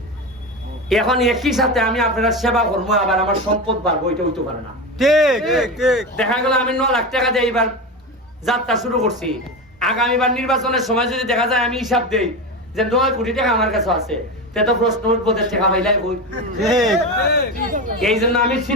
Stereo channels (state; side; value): normal; both; correlation 0.21